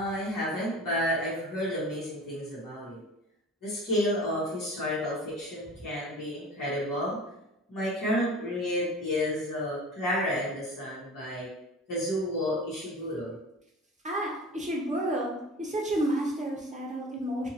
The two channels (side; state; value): both; normal; correlation 0.38